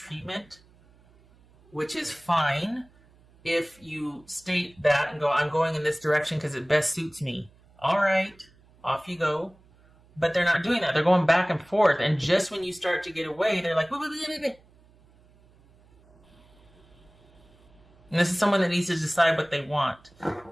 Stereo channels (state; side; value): noise; right; hum, 29 dB below the sound